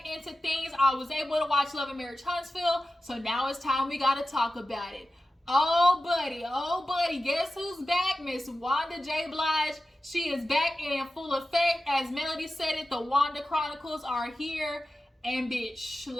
into things. I was able to watch Love&Marriage Huntsville, so now it's time we gotta talk about it. Oh buddy, guess who's back? Miss Wanda J. Blige. She is back and in full effect. As Melody said it, the Wanda Chronicles are here. And bitch,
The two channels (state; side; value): normal; both; correlation 0.94